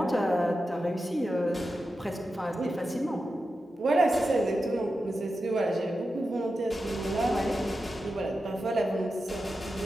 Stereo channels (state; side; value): normal; both; correlation 0.91